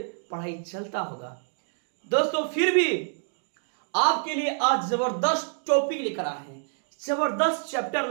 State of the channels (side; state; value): left; silent; digital silence